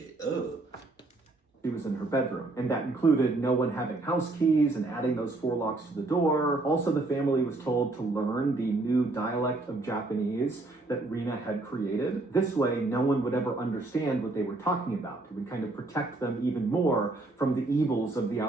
Ugh. She was in her bedroom, and that included no one having house keys and adding those 4 locks to the door. Also, the family was told to learn the new dialect of Japanese that Rina had created. This way, no one would ever understand what they were talking about. It would kind of protect them even more from the evils of the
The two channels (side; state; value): left; quieter; 3.1 dB